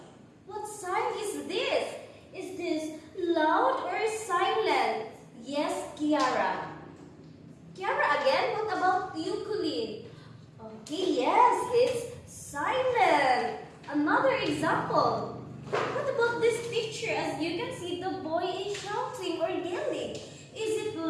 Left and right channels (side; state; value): both; identical; correlation 1.00